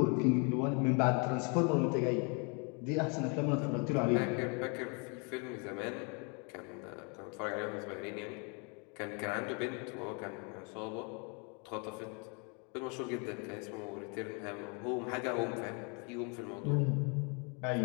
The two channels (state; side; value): quieter; right; 34.5 dB